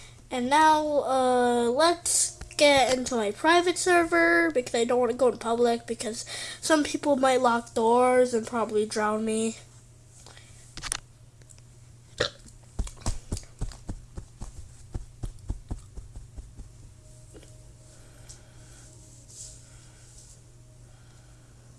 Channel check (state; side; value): identical; both; correlation 1.00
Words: And now let's get into my private server because I don't want to go to public because some people might lock doors and probably drown me.